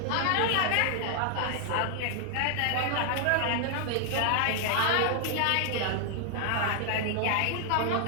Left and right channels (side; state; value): both; different; correlation 0.00